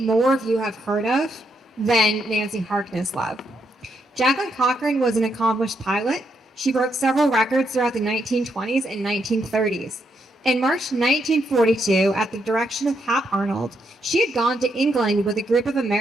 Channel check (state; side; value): normal; both; correlation 0.78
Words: more of you have heard of than Nancy Harkness Love. Jacqueline Cochran was an accomplished pilot. She broke several records throughout the 1920s and 1930s. In March 1942, at the direction of Hap Arnold, she had gone to England with a group of